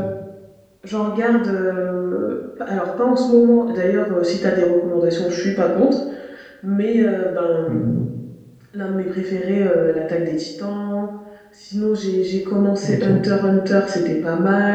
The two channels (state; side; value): identical; both; correlation 1.00